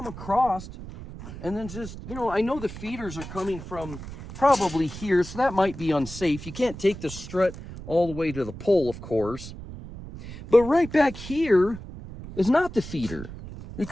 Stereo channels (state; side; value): noise; right; rumble, 12 dB below the sound